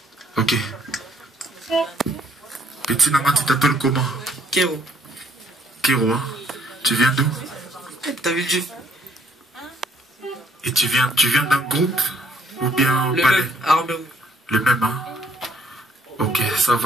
Ok. Petit Nama, tu t'appelles comment? Kéro. Kéro, hein? Tu viens d'où? T'as vu Dieu? Et tu viens d'un groupe? Ou bien le palais? Même, Armée Rouge. Le même, hein? Ok, ça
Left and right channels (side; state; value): both; normal; correlation 0.66